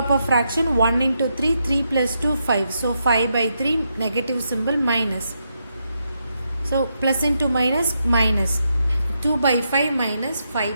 fraction, 1 into 3, 3 plus 2, 5. So 5 by 3, negative symbol, minus. So plus into minus, minus. 2 by 5 minus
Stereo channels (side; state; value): both; inverted; correlation -0.82